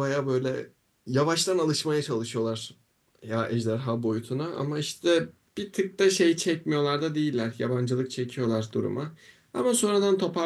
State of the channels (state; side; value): identical; both; correlation 1.00